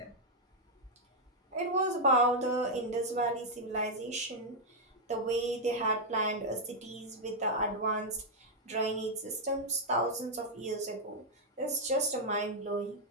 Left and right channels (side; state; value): both; normal; correlation -0.03